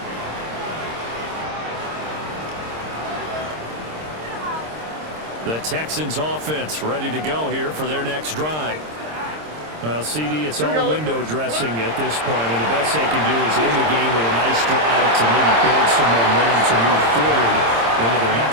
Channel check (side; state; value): left; late; 26 ms